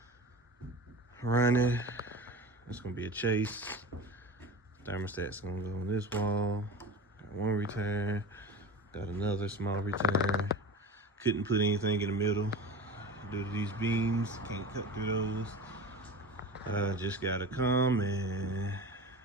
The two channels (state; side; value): normal; both; correlation 0.32